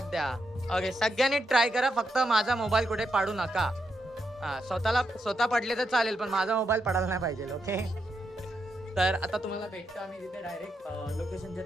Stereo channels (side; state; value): both; normal; correlation 0.82